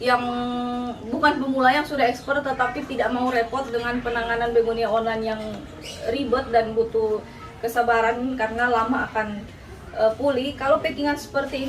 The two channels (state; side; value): identical; both; correlation 1.00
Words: yang bukan pemula yang sudah expert tetapi tidak mau repot dengan penanganan begonia online yang ribet dan butuh kesabaran karena lama akan pulih. Kalau packingan seperti